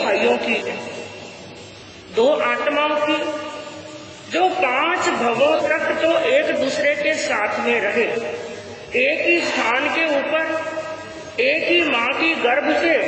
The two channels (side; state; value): both; identical; correlation 1.00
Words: की है, दो आत्माओं की, जो 5 भवों तक तो एक दूसरे के साथ में रहे, एक ही स्थान के ऊपर, एक ही माँ की गर्भ से